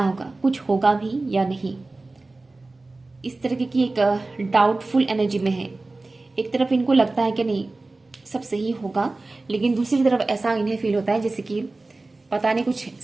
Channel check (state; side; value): quieter; left; 3.2 dB